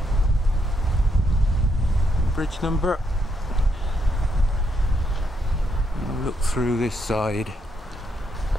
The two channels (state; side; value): normal; both; correlation 0.77